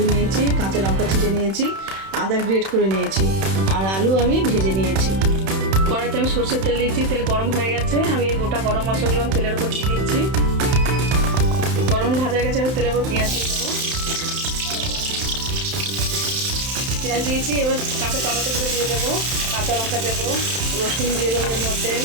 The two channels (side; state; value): left; late; 31 ms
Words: নিয়েছি, কাঁচা লঙ্কা ছিটে নিয়েছি, আদা গ্রেট করে নিয়েছি, আর আলু আমি ভেজে নিয়েছি। কড়াইতে আমি সরষের তেল দিয়েছি, তেল গরম হয়ে গেছে। আমি এই গোটা গরম মশলাগুলো আমি তেলের উপর দিয়ে দিচ্ছি। গরম ভাজা হয়ে গেছে, আমি তেলের উপর পেঁয়াজ দিয়ে দেবো। পেঁয়াজ দিয়েছি, এবার কাঁচা টমেটোগুলো দিয়ে দেবো, কাঁচা লঙ্কা দেবো, রসুন দিয়ে দেবো এর মধ্যে,